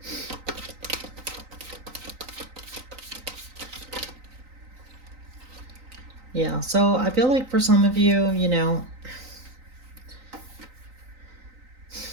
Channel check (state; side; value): late; left; 3.9 ms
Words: Yeah, so I feel like for some of you, you know,